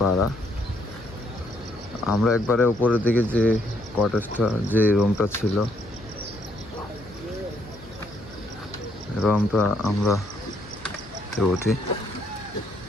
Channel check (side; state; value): left; noise; hum, 20 dB below the sound